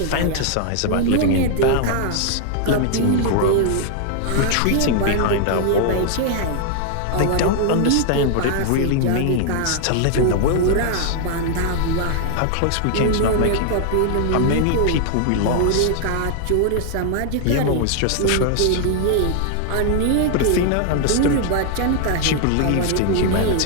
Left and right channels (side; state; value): both; different; correlation 0.00